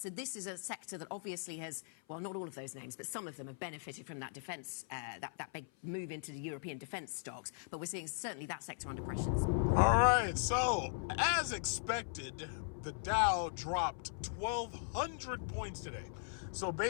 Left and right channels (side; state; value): right; silent; 52 dB below the other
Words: this is a sector that obviously has, well, not all of those names, but some of them have benefited from that defence, that big move into the European defence stocks. But we're seeing certainly that sector under pressures. All right, so as expected, the Dow dropped 1,200 points today. So